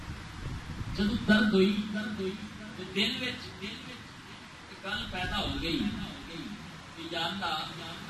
جدوں درد ہوئی تے دل وچ گل پیدا ہو گئی کہ یا اللہ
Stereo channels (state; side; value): identical; both; correlation 1.00